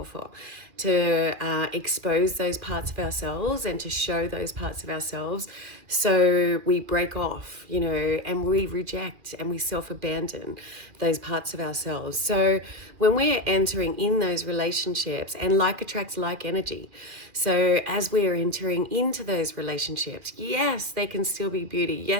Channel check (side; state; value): left; late; 2.4 ms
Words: to expose those parts of ourselves and to show those parts of ourselves. So we break off, and we reject and we self-abandon those parts of ourselves. So when we're entering in those relationships, and like attracts like energy, so as we are entering into those relationships, yes, they can still be beauty.